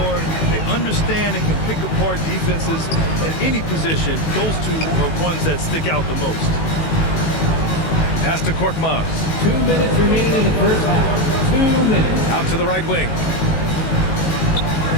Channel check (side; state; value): right; late; 18 ms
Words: they understand and can pick apart defenses at any position. Those two are ones that stick out the most. Pass to Korkmaz. 2 minutes remaining in the first half. 2 minutes. Out to the right wing.